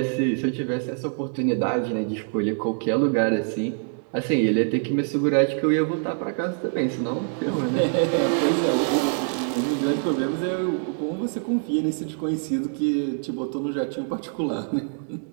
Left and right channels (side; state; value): left; silent; 62 dB below the other